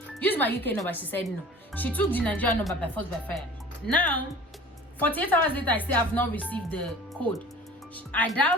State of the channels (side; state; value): both; normal; correlation 0.43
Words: Use my UK number. She said no. She took the Nigerian number by force by fire. Now, 48 hours later, I still have not received the code. I